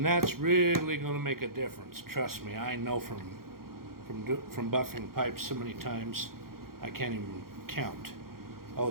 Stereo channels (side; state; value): left; late; 0.93 ms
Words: that's really going to make a difference. Trust me, I know from buffing pipes so many times, I can't even count. Oh,